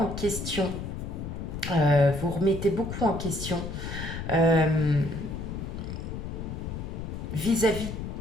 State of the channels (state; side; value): noise; left; rumble, 6 dB below the sound